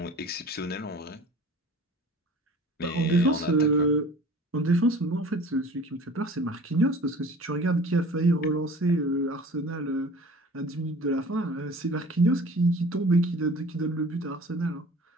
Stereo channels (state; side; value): normal; both; correlation 0.44